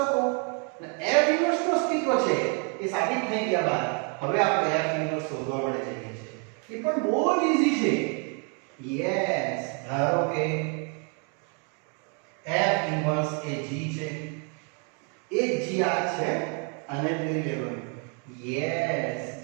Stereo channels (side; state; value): left; quieter; 38.0 dB